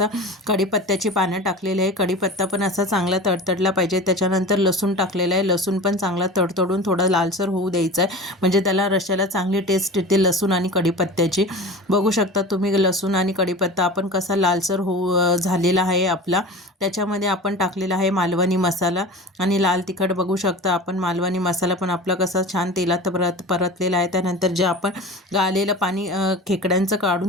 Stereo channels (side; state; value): both; normal; correlation 0.34